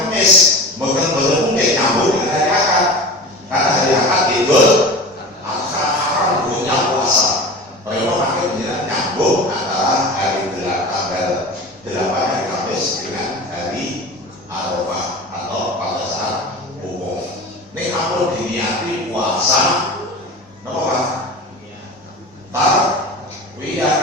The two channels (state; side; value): normal; both; correlation 0.33